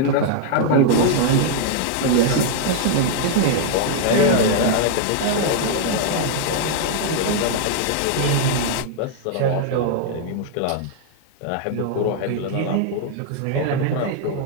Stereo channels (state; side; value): different; both; correlation -0.01